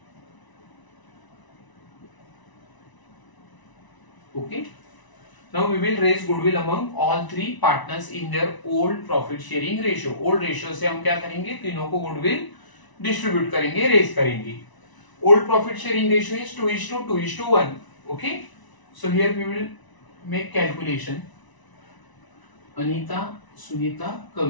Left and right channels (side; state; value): right; late; 1.0 ms